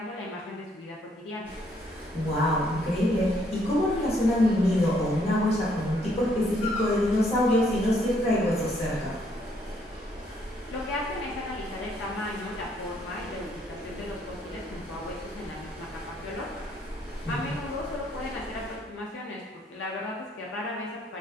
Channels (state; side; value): normal; both; correlation 0.69